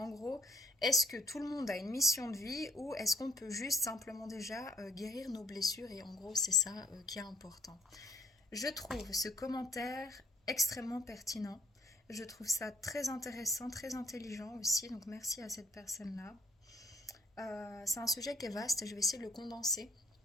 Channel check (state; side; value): normal; both; correlation 0.63